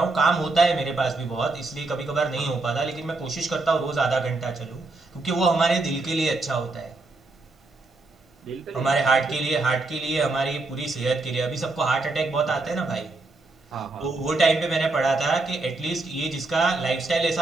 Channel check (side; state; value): left; quieter; 3.3 dB